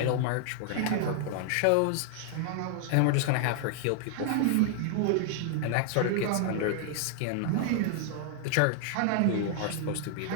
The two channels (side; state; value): both; different; correlation 0.00